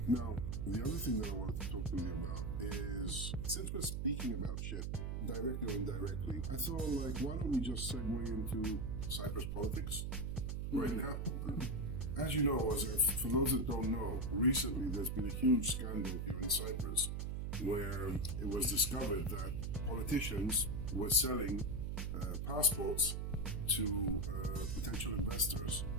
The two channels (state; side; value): noise; right; hum, 2 dB below the sound